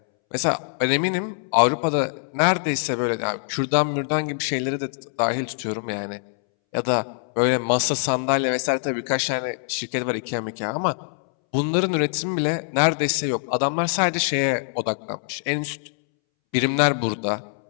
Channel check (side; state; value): right; silent; 63 dB below the other